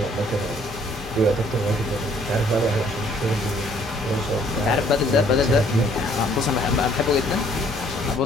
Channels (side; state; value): both; normal; correlation 0.62